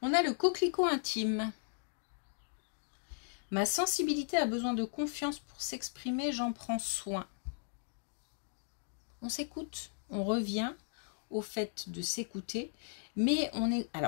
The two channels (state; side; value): silent; right; digital silence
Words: On a le coquelicot intime. Ma sensibilité a besoin de confiance pour s'exprimer, j'en prends soin. On s'écoute, on revient au fait de s'écouter, mais on est...